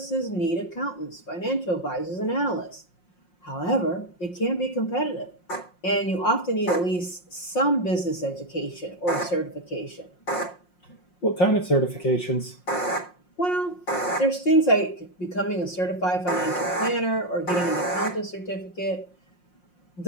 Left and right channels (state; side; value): late; right; 5.6 ms